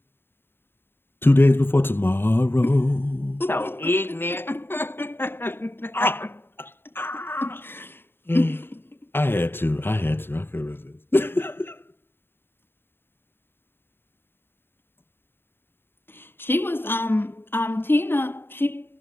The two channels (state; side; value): late; right; 0.11 ms